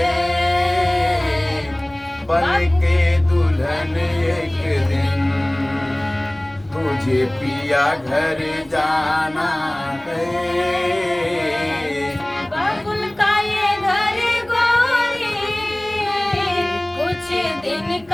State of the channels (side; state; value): left; noise; rumble, 28 dB below the sound